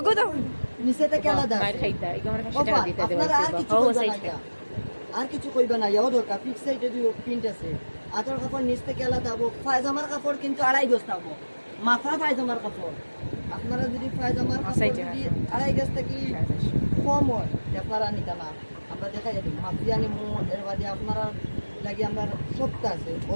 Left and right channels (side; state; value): both; inverted; correlation -1.00